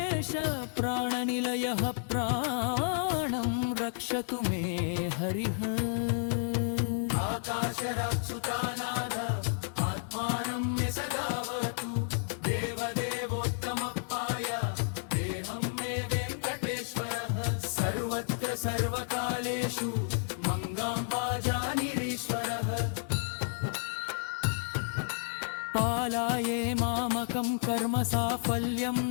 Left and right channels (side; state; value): right; silent; digital silence